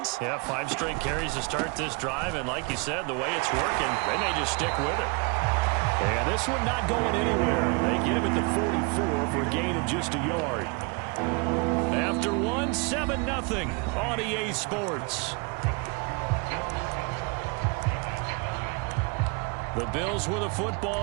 Yeah, 5 straight carries to start this drive. And like you said, the way it's working, they may just stick with it. And this one not going anywhere. They get him at the 44 for a gain of just a yard. After 1, 7-0 on EA Sports. The Bills with the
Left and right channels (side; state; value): left; quieter; 30.4 dB